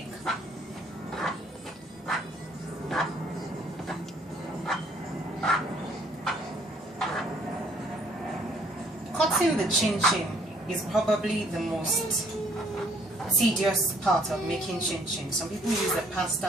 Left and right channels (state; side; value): normal; both; correlation 0.63